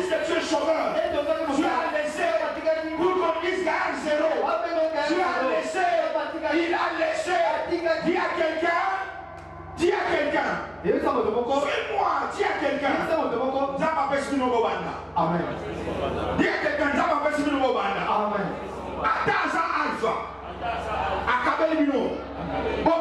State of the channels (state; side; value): identical; both; correlation 1.00